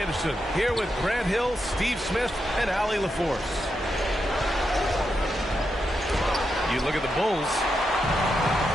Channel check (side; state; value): both; normal; correlation 0.85